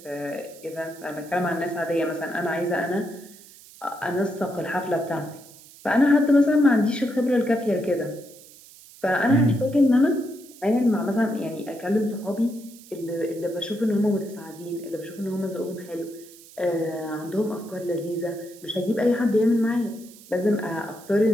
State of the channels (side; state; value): right; noise; hiss, 21 dB below the sound